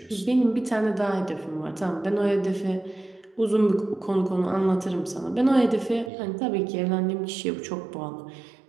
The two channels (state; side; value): drops out; left; at 6.1 s